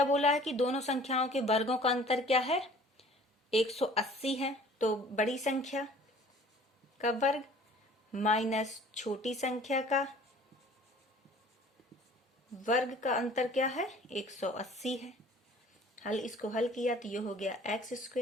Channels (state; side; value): normal; both; correlation 0.50